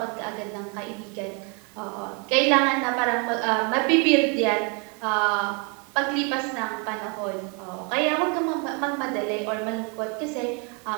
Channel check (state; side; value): quieter; left; 34.4 dB